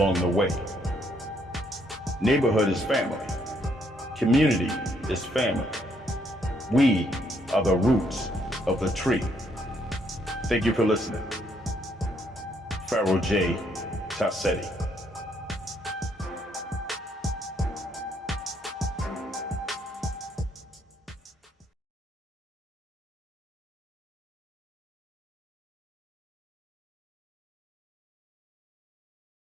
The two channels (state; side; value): normal; both; correlation 0.71